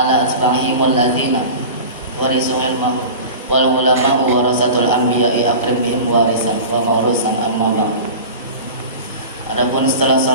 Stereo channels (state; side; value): inverted; both; correlation -0.35